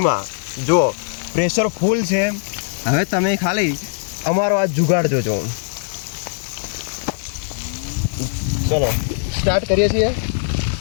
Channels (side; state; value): right; silent; digital silence